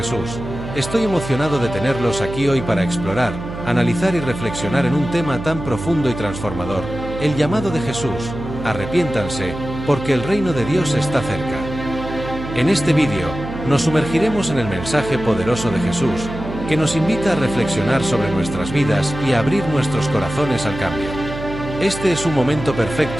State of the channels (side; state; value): right; noise; hum, 9 dB below the sound